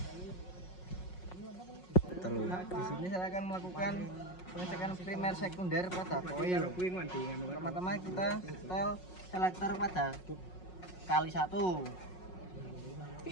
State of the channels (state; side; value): late; right; 5.5 ms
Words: Di sini saya akan melakukan pengecekan primer sekunder pada koil. Pertama-tama kita setel selektor pada kali 1.